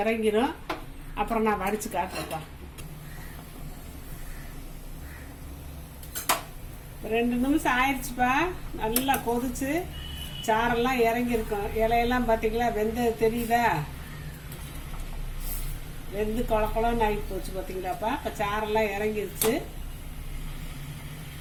அப்புறம் நான் வடிச்சு காட்டுறேன்ப்பா. 2 நிமிஷம் ஆயிடுச்சுப்பா. நல்லா கொதிச்சு சாரெல்லாம் இறங்கிருக்கும். இலையெல்லாம் பார்த்தீங்களா, வெந்தது தெரியுதா? வெந்து கொலன்னு ஆகி போச்சு பார்த்தீங்களாப்பா. இப்போ சாரெல்லாம் இறங்கிருச்சு.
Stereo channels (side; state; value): both; identical; correlation 1.00